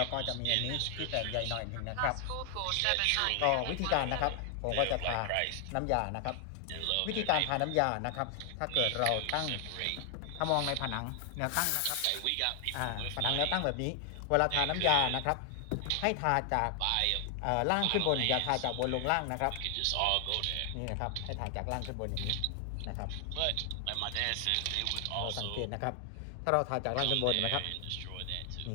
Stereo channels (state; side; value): different; both; correlation 0.00